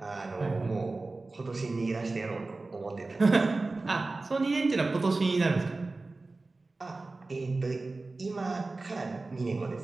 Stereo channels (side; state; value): left; quieter; 3.4 dB